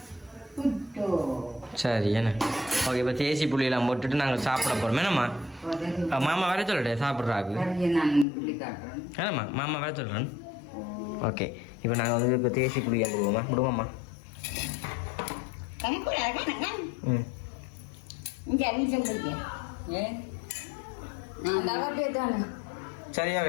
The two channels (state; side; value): drops out; right; at 8.2 s